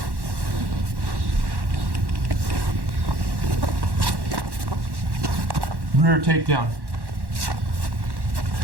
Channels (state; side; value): late; left; 1.1 ms